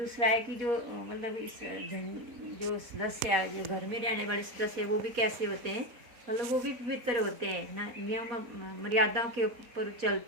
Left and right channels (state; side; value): late; left; 4.1 ms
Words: है कि जो मतलब इस जो सदस्य, जो घर में रहने वाले सदस्य, वो भी कैसे होते हैं? मतलब वो भी पवित्र होते हैं ना, नियम मर्यादाओं के ऊपर